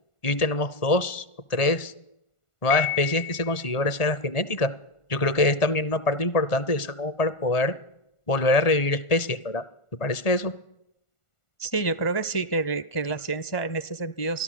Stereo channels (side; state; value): right; late; 1.5 ms